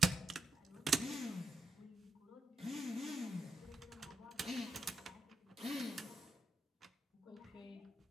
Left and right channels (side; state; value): both; normal; correlation 0.84